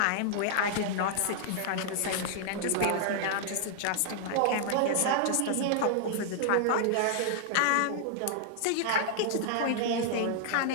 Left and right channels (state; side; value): different; both; correlation 0.00